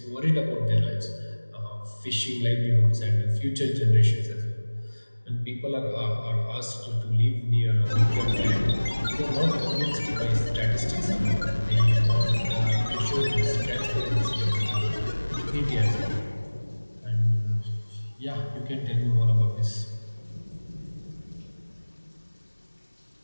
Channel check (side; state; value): both; inverted; correlation -1.00